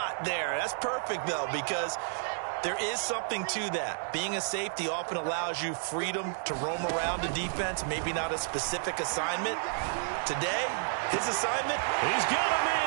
there. That's perfect, though, because there is something to that. Being a safety often allows you freedom to roam around the defense, maybe not a specific assignment. Today, his assignment, he's got a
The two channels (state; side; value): silent; left; digital silence